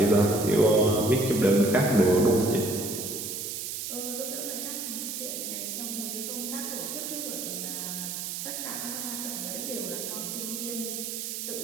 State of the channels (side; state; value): right; noise; hiss, 5 dB below the sound